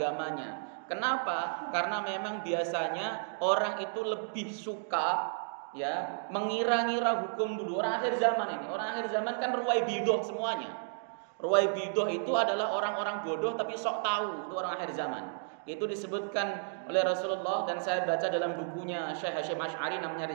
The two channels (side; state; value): left; silent; digital silence